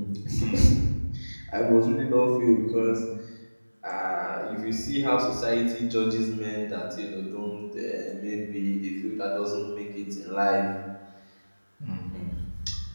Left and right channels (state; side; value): inverted; both; correlation -1.00